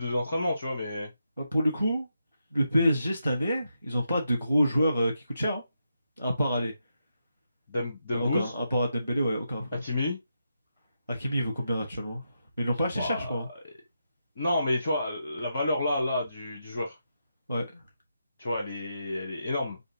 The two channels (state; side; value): inverted; both; correlation -0.84